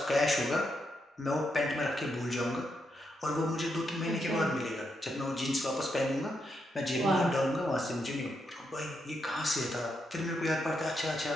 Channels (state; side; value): normal; both; correlation 0.81